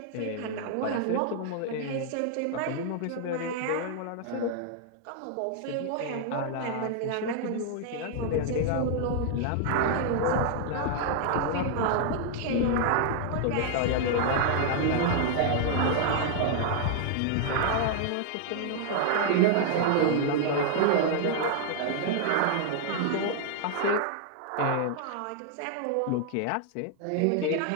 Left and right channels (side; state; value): both; different; correlation -0.01